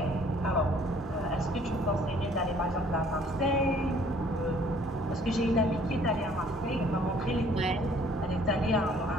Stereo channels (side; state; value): both; normal; correlation 0.58